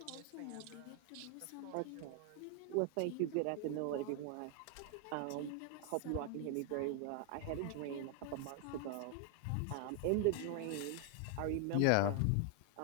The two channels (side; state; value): both; different; correlation 0.00